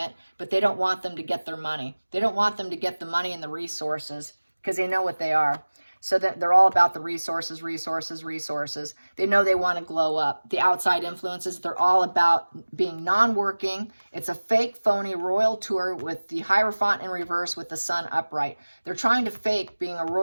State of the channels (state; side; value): inverted; both; correlation -1.00